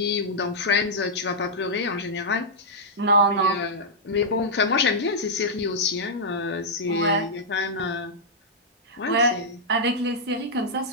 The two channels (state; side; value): normal; both; correlation -0.09